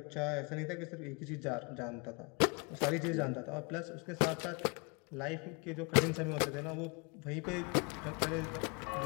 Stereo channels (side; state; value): right; quieter; 32.4 dB